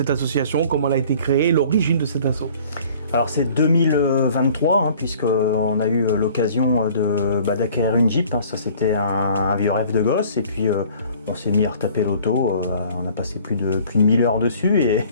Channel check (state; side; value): inverted; both; correlation -0.52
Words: association, comment elle a été créée, l'origine de cette asso? Alors c'est 2023, puisqu'on a eu l'occasion d'acquérir une Jeep. Ça c'était un vieux rêve de gosse, et puis on s'est mis à retaper l'auto. On a passé plus de 1000 heures dessus,